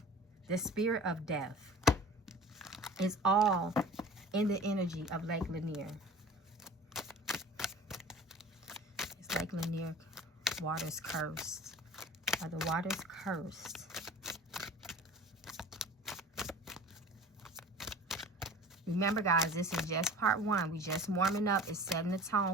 spirit of death is all in the energy of Lake Lanier. It's Lake Lanier. Waters cursed. Are the waters cursed? Remember, guys, this is just part 1. We just warming up. It's setting the tone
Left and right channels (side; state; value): both; normal; correlation 0.41